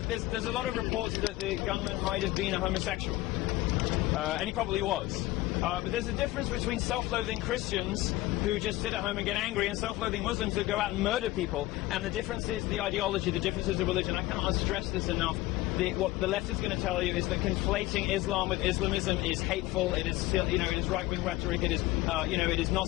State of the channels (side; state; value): right; quieter; 17.7 dB